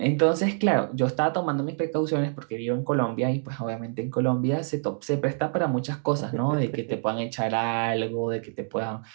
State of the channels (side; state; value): left; silent; 61 dB below the other